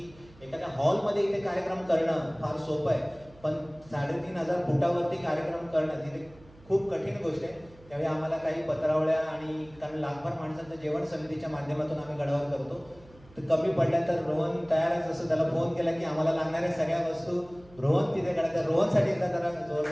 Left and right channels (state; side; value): noise; right; hum, 25 dB below the sound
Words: एखाद्या हॉलमध्ये इथे कार्यक्रम करणं फार सोपं आहे, पण 3500 फुटावरती कार्यक्रम करणं तिथे खूप कठीण गोष्ट आहे. त्यावेळी आम्हाला काही पत्रावळ्या आणि कारण लाखभर माणसांचं जेवण समितीच्या माध्यमातून आम्ही गडावर करतो, तर कमी पडल्या तर रोहन तयारच असं त्याला फोन केला की आम्हाला लागणाऱ्या सगळ्या वस्तू रोहन तिथे कळतात. रोहनसाठी एकदा जरा